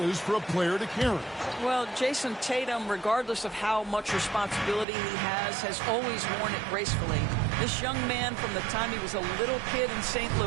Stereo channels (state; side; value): drops out; left; at 4.9 s